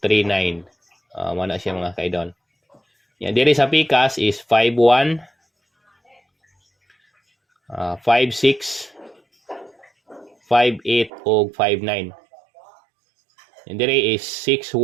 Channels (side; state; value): left; drops out; at 11.1 s